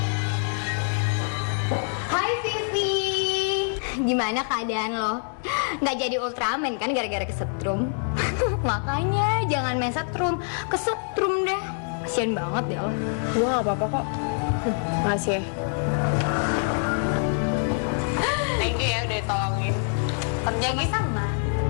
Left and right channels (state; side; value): silent; right; 61 dB below the other